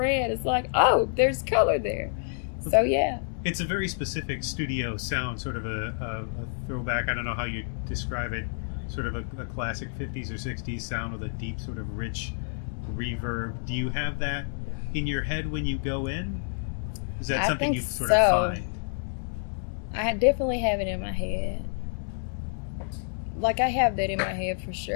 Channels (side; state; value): right; silent; 58 dB below the other